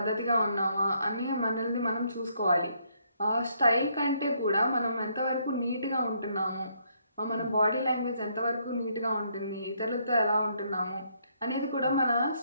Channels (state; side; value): inverted; both; correlation -0.71